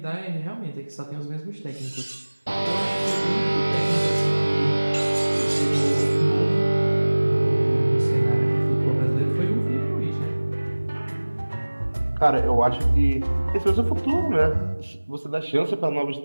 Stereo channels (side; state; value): both; inverted; correlation -1.00